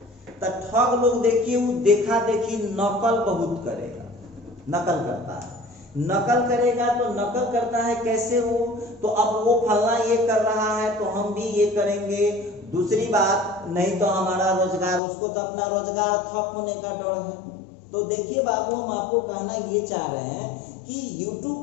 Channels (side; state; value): right; drops out; at 15.0 s